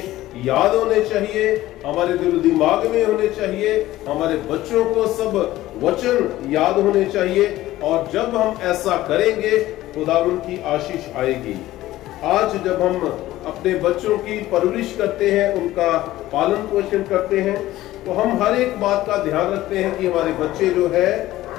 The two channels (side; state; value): right; quieter; 15.6 dB